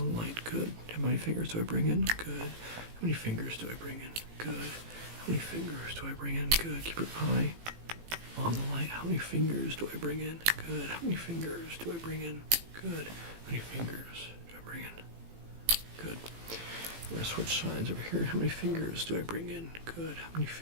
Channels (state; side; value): late; left; 18 ms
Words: light. Good. How many fingers do I bring in? Good. How many fingers do I bring in? Good. How many fingers do I bring in? Good. Keep your eye on the light. How many fingers do I bring in? Good. How many fingers do I bring in? Good. How many fingers do I bring in? Good. We're going to switch sides over here. How many fingers do I bring in? Good. How many